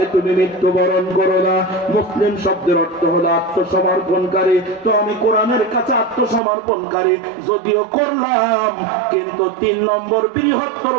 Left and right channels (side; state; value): left; drops out; at 6.4 s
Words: তুমি মৃত্যুবরণ করো না। মুসলিম শব্দের অর্থ হলো আত্মসমর্পণকারী। তো আমি কোরআনের কাছে আত্মসমর্পণকারী যদিও করলাম, কিন্তু 3 নম্বর বৃহত্তর